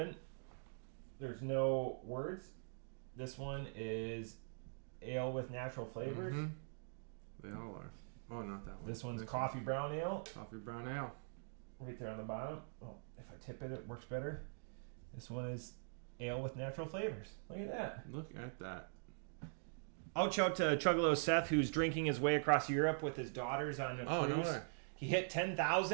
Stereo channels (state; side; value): silent; left; digital silence